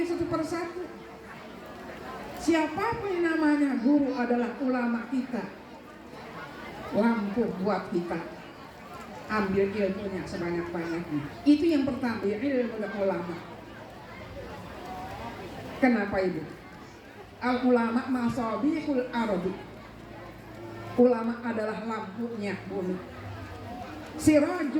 satu persatu. Siapapun yang namanya guru adalah ulama kita, lampu buat kita. Ambil ilmunya sebanyak-banyaknya. Itu yang pertama, ilmu ulama. Kenapa ibu? Al-ulama masabihul ardi. Ulama adalah lampunya bumi.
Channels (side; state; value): both; identical; correlation 1.00